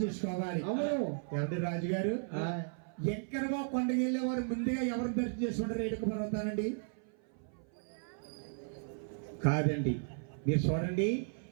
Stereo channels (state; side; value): silent; left; 54 dB below the other